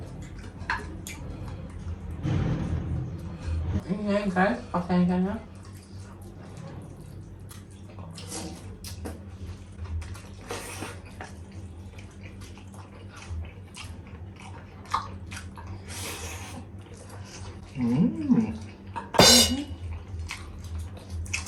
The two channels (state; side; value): identical; both; correlation 1.00